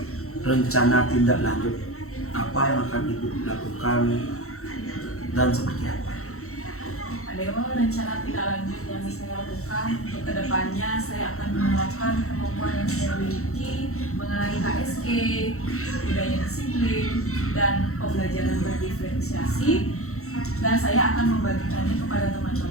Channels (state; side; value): late; right; 0.63 ms